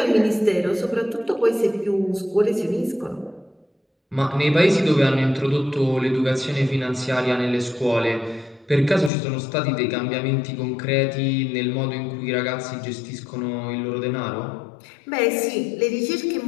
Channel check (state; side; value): drops out; right; at 9.1 s